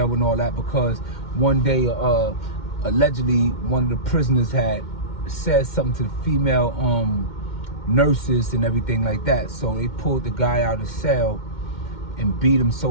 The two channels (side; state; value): right; late; 2.1 ms